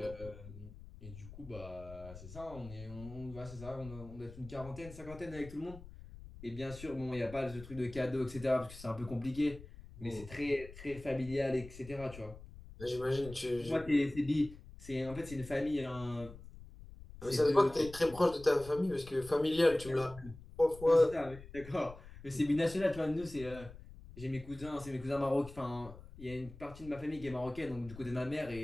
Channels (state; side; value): noise; left; rumble, 16 dB below the sound